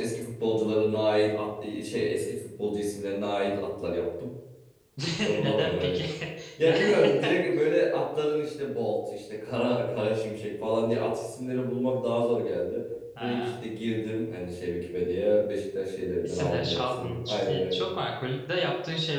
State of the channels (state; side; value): identical; both; correlation 1.00